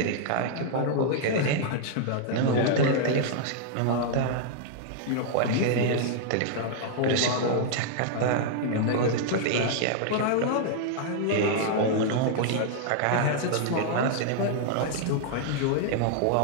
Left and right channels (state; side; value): different; both; correlation -0.01